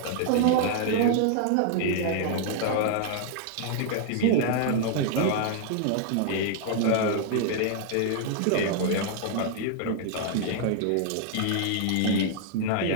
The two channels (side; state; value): both; different; correlation 0.00